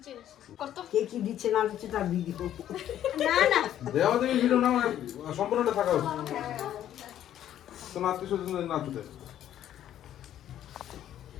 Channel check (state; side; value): quieter; right; 11.4 dB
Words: গেছে। কে কি দিচ্ছে না দিচ্ছে তার ভিডিও। দেওয়া দেবী ভিডিও না সম্পূর্ণটা থাকা উচিত। তোমার আত্মীয়-স্বজন না ছুটে।